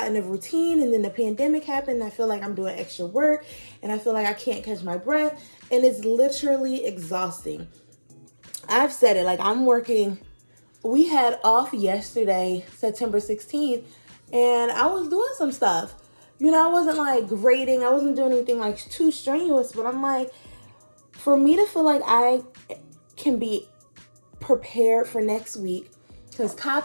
a routine, and then the pandemic happened. And I feel like I'm doing extra work and I feel like I can't catch my breath. And it's literally exhausting. I've said it, like I'm working. We had off yesterday, September 16th, and I was doing some stuff. I wasn't like grading. I wasn't doing anything like too strenuous, but I'm like, for me to feel like I can be prepared for next week, because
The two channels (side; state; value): both; inverted; correlation -1.00